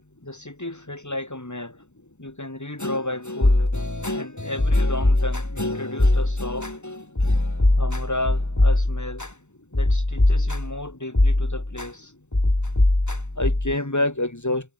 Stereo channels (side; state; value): right; late; 0.83 ms